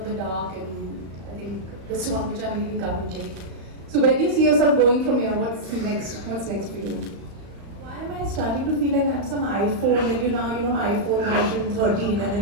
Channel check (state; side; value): late; left; 35 ms